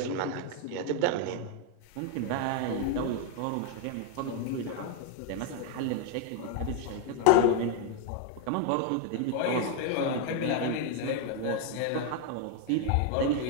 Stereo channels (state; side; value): different; both; correlation 0.01